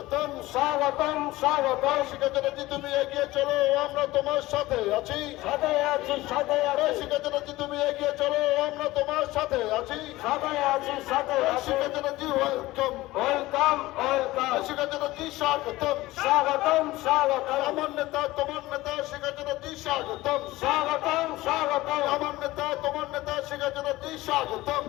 স্বাগতম স্বাগতম শিক্ষার্থী তুমি এগিয়ে চলো, আমরা তোমার সাথে আছি, সাথে আছি, সাথে আছি শিক্ষার্থী তুমি এগিয়ে চলো, আমরা তোমার সাথে আছি, সাথে আছি, সাথে আছি শিক্ষার্থী ওয়েলকাম ওয়েলকাম ওয়েলকাম শিক্ষার্থী স্বাগতম স্বাগতম স্বাগতম আমার নেতা তোমার নেতা শিক্ষার্থী স্বাগতম স্বাগতম স্বাগতম আমার নেতা তোমার নেতা শিক্ষার্থী স্বাগতম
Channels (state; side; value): quieter; right; 18.4 dB